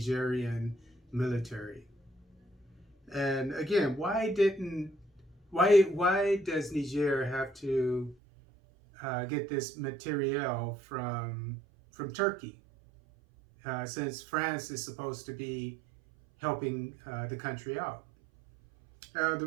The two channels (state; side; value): drops out; left; at 8.2 s